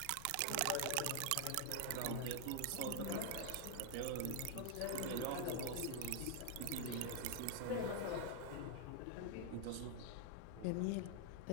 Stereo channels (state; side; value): different; both; correlation 0.00